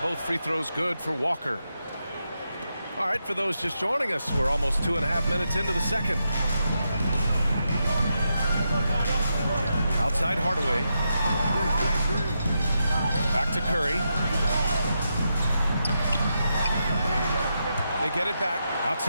both free throws good for Walker. All right, for those just joining us, we're almost 2.5 minutes into the second. Outside Hardaway. Back to Curry. They get it back.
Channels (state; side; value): inverted; both; correlation -0.85